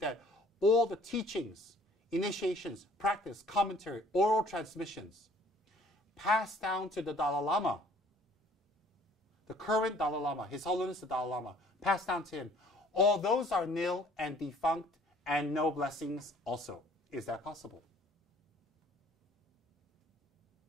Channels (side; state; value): both; normal; correlation 0.56